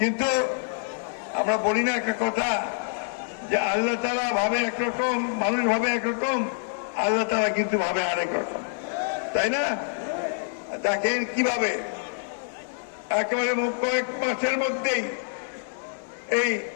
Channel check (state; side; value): silent; right; digital silence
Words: আমরা বলি না একটা কথা যে আল্লাহ তাআলা ভাবে একরকম, মানুষ ভাবে একরকম, আল্লাহ তাআলা কিন্তু ভাবে আরেক রকম, তাই না? দেখেন কিভাবে একেবারে কয়েক মাসের মধ্যেই এই